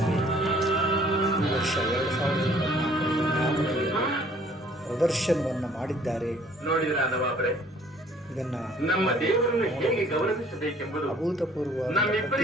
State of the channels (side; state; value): both; normal; correlation 0.57